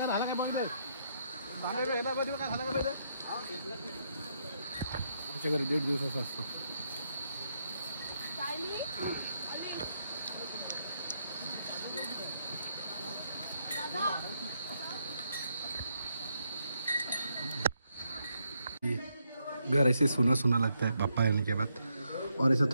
आमच्या घरी 1.5 दिवसाचा असतो. घर ऐसे सुना सुना लगता है पापा आने के बाद. और ऐसा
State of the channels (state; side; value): inverted; both; correlation -0.77